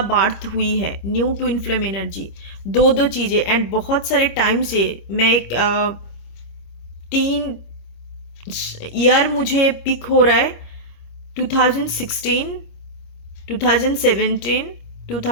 बार्थ हुई है, न्यू ट्विन फ्लेम एनर्जी, दो चीज़ें। एंड बहुत सारे टाइम से मैं एक 3 ईयर मुझे पिक हो रहा है, 2016, 2017,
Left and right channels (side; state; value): right; late; 26 ms